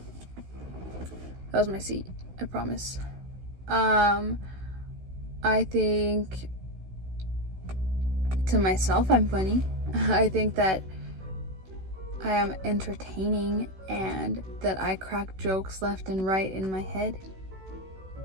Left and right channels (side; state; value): left; late; 16 ms